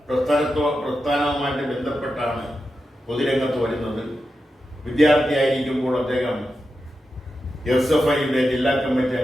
പ്രസ്ഥാനവുമായിട്ട് ബന്ധപ്പെട്ടാണ് പൊതുരംഗത്ത് വരുന്നത്. വിദ്യാർത്ഥിയായിരിക്കുമ്പോൾ അദ്ദേഹം SFIയുടെ ജില്ലാ കമ്മിറ്റി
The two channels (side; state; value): both; normal; correlation 0.89